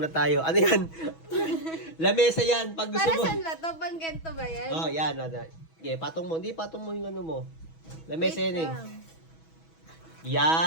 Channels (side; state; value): right; late; 6.2 ms